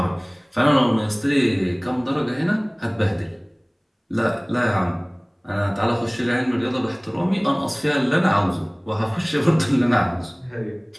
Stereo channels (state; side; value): identical; both; correlation 1.00